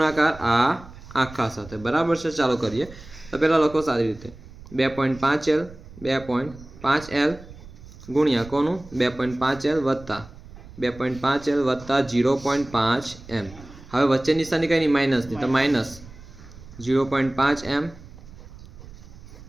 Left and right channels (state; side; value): noise; right; rumble, 18 dB below the sound